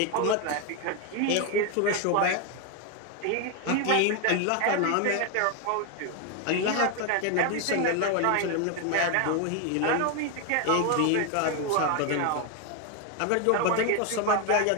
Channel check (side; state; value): both; different; correlation 0.01